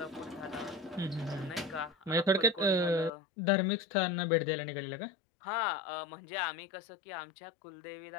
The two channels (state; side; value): drops out; right; at 3.1 s